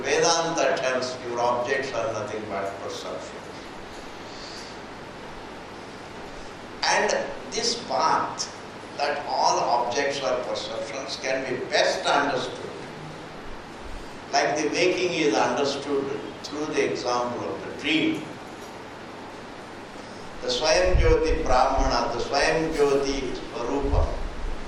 Vedanta tells your objects are nothing but perceptions. And this path, that all objects are perceptions, can be best understood. Like the waking is understood through the example of the dream. the Swayam Jyoti Brahmana, the Swayam Jyoti Swarupa,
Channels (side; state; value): both; identical; correlation 1.00